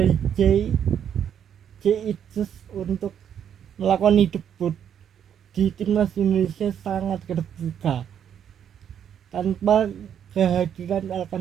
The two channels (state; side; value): quieter; left; 8.9 dB